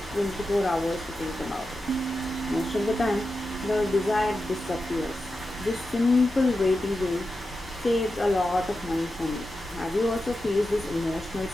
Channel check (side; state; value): both; normal; correlation 0.90